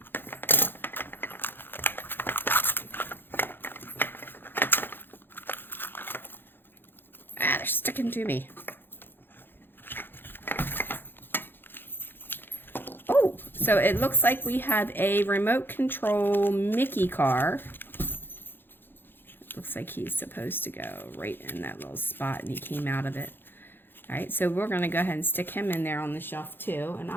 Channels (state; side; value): late; right; 0.10 ms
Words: They're sticking to me. Oh, so it looks like we have a remote control Mickey car. Looks like he's supposed to go right in that little spot and he came out of it. All right, so we're going to go ahead and stick him in there on the shelf too, and